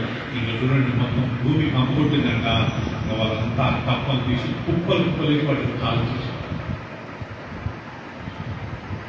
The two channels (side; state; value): both; identical; correlation 1.00